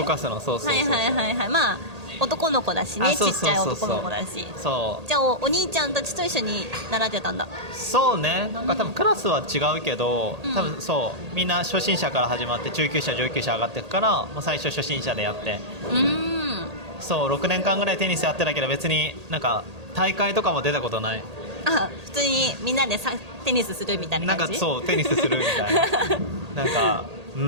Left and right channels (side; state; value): left; late; 1.8 ms